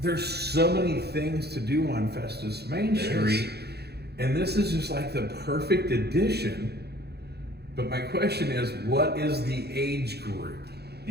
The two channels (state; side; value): late; left; 0.47 ms